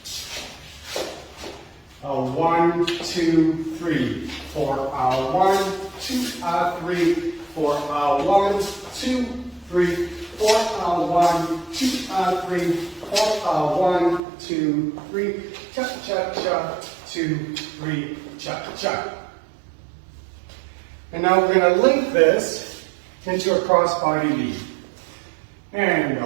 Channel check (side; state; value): left; drops out; at 14.2 s